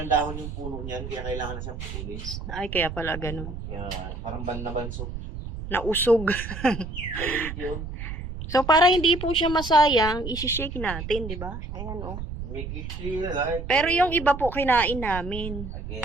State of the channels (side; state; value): right; noise; rumble, 8 dB below the sound